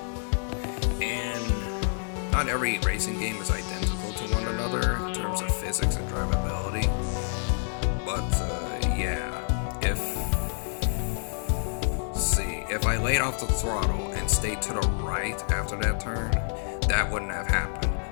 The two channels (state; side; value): silent; right; 59 dB below the other